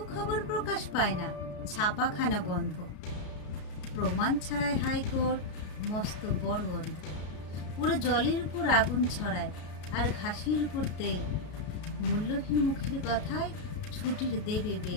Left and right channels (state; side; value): late; right; 33 ms